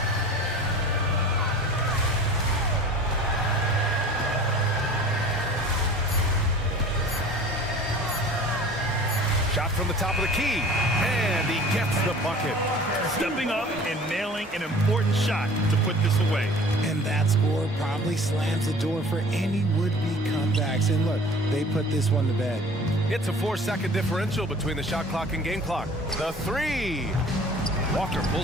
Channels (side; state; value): both; normal; correlation 0.44